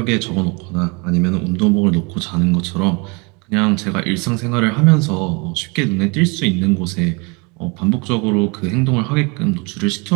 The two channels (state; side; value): quieter; left; 29.8 dB